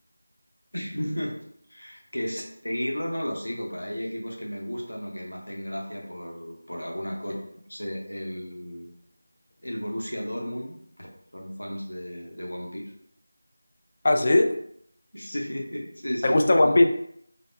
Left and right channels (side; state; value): both; inverted; correlation -0.98